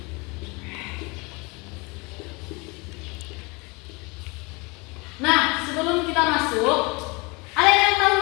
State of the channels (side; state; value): right; quieter; 27.4 dB